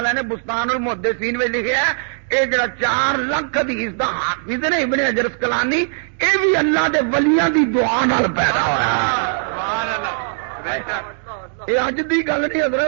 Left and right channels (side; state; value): left; silent; 65 dB below the other